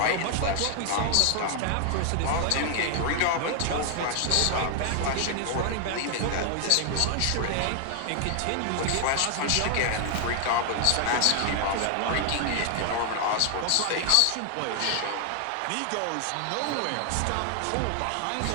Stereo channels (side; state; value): both; different; correlation 0.00